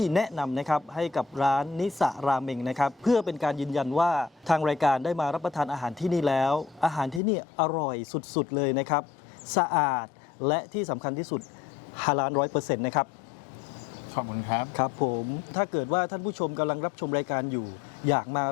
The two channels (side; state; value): right; drops out; at 7.2 s